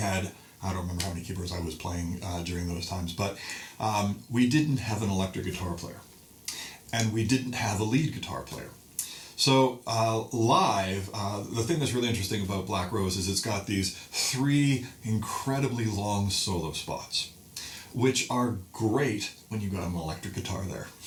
don't remember how many keyboards I was playing during those times, but we didn't have an electric guitar player, and we didn't have a lead guitar player. So live, the thing that's really interesting about Black Rose is it's got these 3 incredibly long solo spots, which are great when you got an electric guitar there,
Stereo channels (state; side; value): identical; both; correlation 1.00